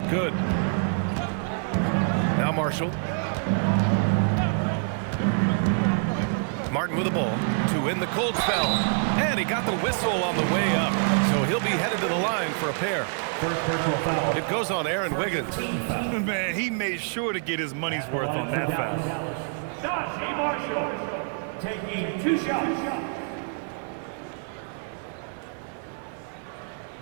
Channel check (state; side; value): silent; left; 57 dB below the other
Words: good. Now Marshall. Martin with the ball to win the cold spell. And he got the whistle on the way up. So he'll be headed to the line for a pair. It goes on Aaron Wiggins. Man, he made sure to get his money's worth on that foul. Naji Marshall taking 2 shots.